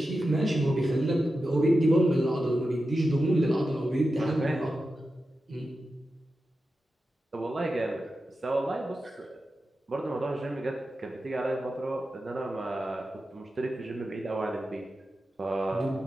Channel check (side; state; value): both; normal; correlation 0.91